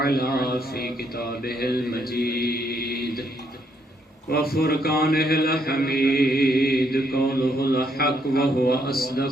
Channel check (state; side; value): normal; both; correlation 0.73